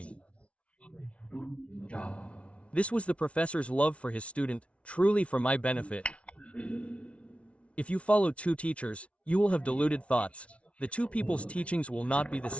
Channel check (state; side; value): late; right; 0.062 ms